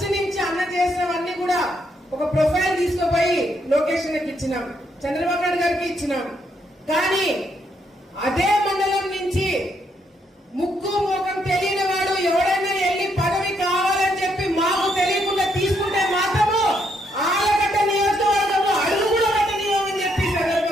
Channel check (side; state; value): both; normal; correlation 0.75